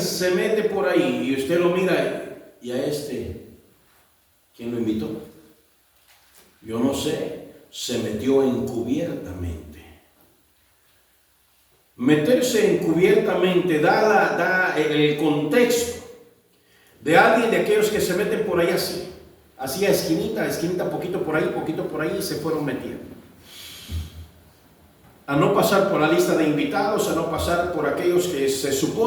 mete por ahí y usted lo mira, y a ¿quién lo invitó? Yo no sé, se metió encubiertamente. Meterse encubiertamente da el contexto de alguien de aquellos que se meten por ahí así a esquinita, poquito por ahí, y se fueron metiendo. A no pasar por la lista de invitados, a no pasar por aquellos que se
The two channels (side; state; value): both; identical; correlation 1.00